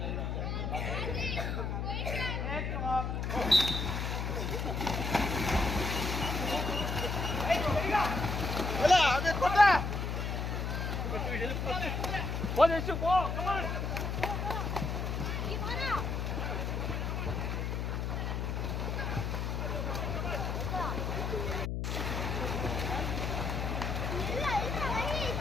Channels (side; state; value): left; noise; hum, 1 dB below the sound